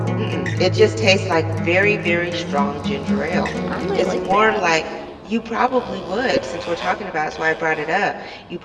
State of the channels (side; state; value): both; identical; correlation 1.00